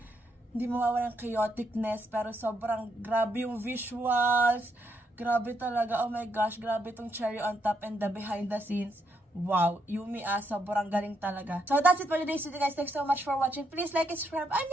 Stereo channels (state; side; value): normal; both; correlation 0.77